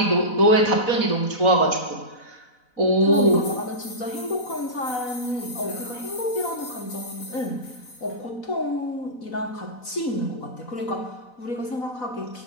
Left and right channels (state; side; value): late; right; 4.0 ms